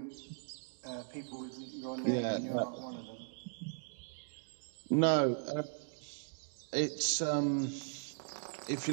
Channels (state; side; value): silent; left; digital silence